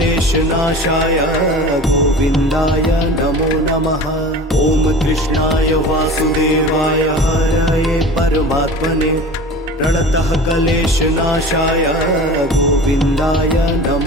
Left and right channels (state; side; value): normal; both; correlation 0.37